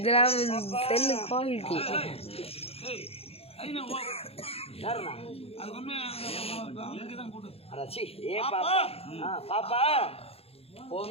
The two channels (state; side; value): late; right; 0.29 ms